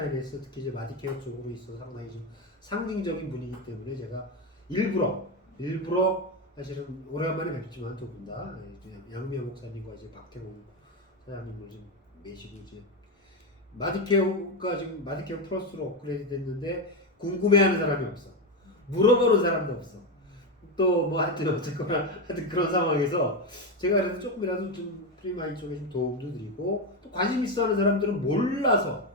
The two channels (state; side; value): normal; both; correlation 0.11